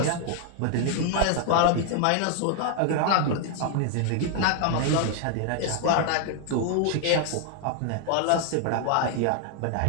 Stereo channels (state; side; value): different; both; correlation 0.00